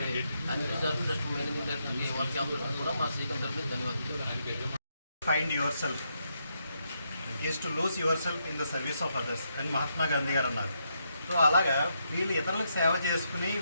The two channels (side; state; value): both; inverted; correlation -0.80